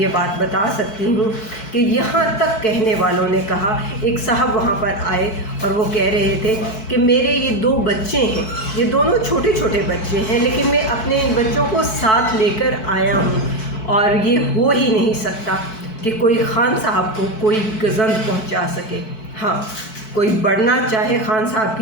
بات بتا سکتی ہوں کہ یہاں تک کہنے والوں نے کہا، ایک صاحب وہاں پر آئے اور وہ کہہ رہے تھے کہ میرے یہ 2 بچے ہیں، یہ دونوں چھوٹے چھوٹے بچے ہیں، لیکن میں اپنے ان بچوں کو ساتھ لے کر آیا ہوں، اور یہ ہو ہی نہیں سکتا کہ کوئی خان صاحب کو کوئی گزند پہنچا سکے۔ ہاں، کوئی بڑھنا چاہے خان صاحب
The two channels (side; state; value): right; late; 4.6 ms